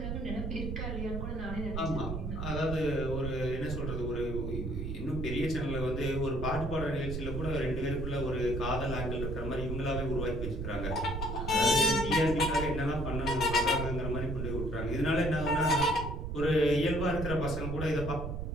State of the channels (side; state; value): right; noise; rumble, 4 dB below the sound